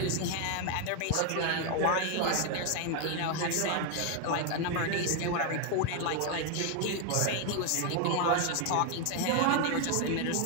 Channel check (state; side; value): different; both; correlation 0.01